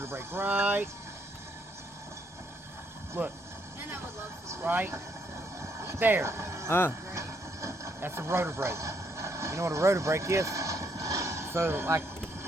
brake right. Look. And I would love some. Right there. Great. That's the rotor brake. You know what a rotor brake is? So, like,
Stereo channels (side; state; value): both; normal; correlation 0.72